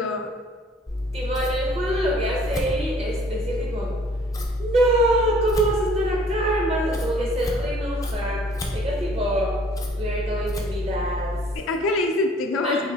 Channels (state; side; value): normal; both; correlation 0.56